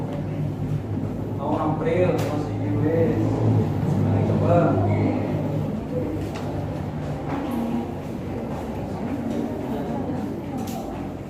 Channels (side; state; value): both; identical; correlation 1.00